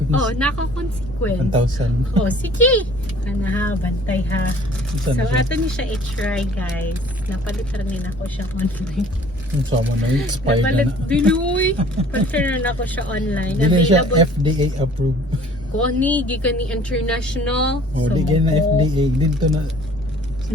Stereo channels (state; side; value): normal; both; correlation 0.52